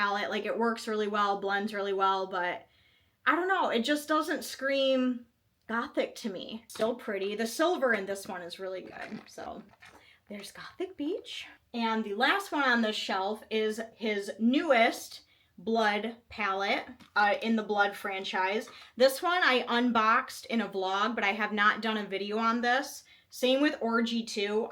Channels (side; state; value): both; identical; correlation 1.00